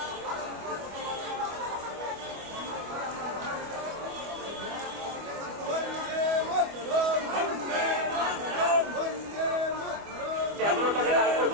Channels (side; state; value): left; late; 25 ms